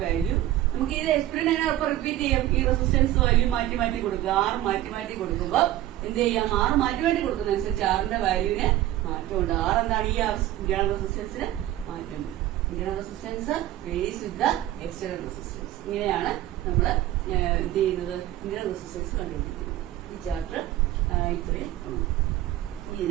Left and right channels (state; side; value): quieter; left; 14.3 dB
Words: വാല്യൂ നമുക്ക് ഇത് എക്സ്പെരിമെന്റ് അപ്പൊ റിപ്പീറ്റ് ചെയ്യാം. ഈ റെസിസ്റ്റൻസ് വാല്യൂ മാറ്റി മാറ്റി കൊടുക്കുക. ആർ മാറ്റി മാറ്റി കൊടുക്കുമ്പോൾ എന്ത് ചെയ്യാം? ആർ മാറ്റി മാറ്റി കൊടുക്കുന്നതനുസരിച്ച് ആറിന്റെ വാല്യൂവിന് മാറ്റമുണ്ട്. ആർ എന്താണ്? ഈ ഇന്റേണൽ റെസിസ്റ്റൻസിന് മാറ്റം. Internal resistance varies with the external resistance. ഇങ്ങനെയാണ് നമ്മൾ എന്ത് ചെയ്യുന്നത്? ഇന്റേണൽ റെസിസ്റ്റൻസ് കണ്ടുപിടിക്കുന്നത്. ഈ ചാപ്റ്റർ ഇത്രയും